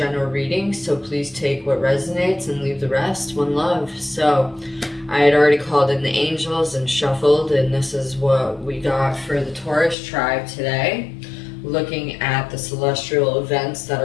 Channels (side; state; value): right; drops out; at 10.0 s